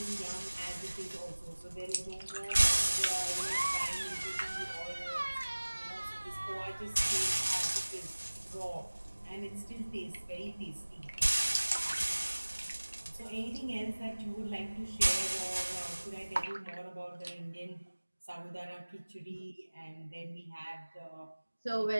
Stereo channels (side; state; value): both; inverted; correlation -1.00